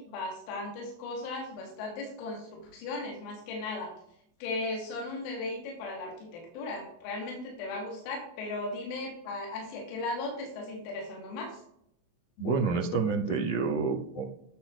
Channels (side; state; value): right; late; 24 ms